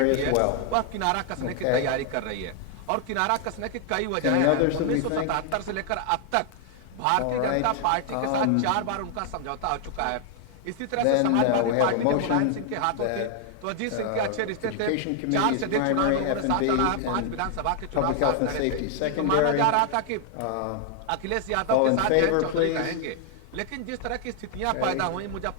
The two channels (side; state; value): both; different; correlation 0.00